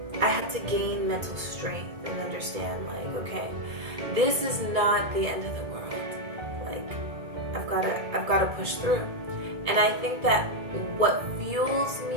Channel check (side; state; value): left; late; 2.1 ms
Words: I had to gain mental strength and understand, like, okay, this is not the end of the world. Like, I've got to push through. And I think that what fuels